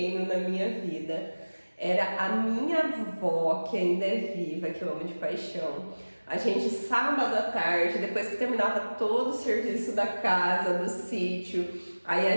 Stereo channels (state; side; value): inverted; both; correlation -1.00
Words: na minha vida. Era a minha avó, que ainda é viva, que eu amo de paixão. A gente, sábado à tarde, depois que terminava todo o serviço da casa, do sítio, aí a